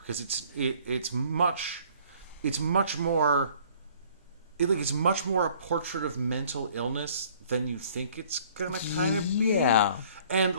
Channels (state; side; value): inverted; both; correlation -0.56